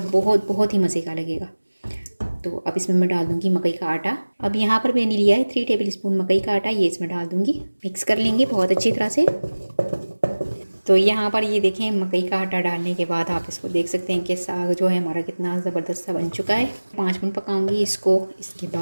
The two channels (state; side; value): inverted; both; correlation -1.00